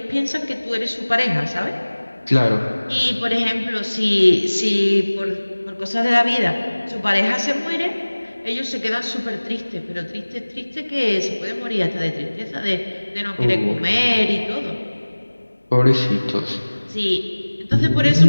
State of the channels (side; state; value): both; inverted; correlation -1.00